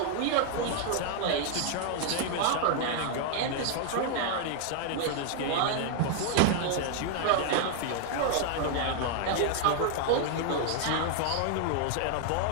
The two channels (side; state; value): both; different; correlation 0.00